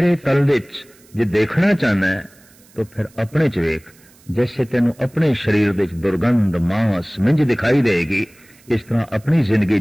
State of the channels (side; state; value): right; noise; hiss, 28 dB below the sound